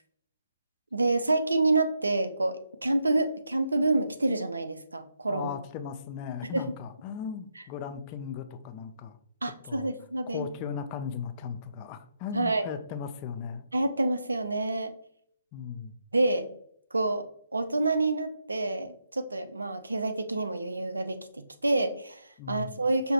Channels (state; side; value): inverted; both; correlation -0.82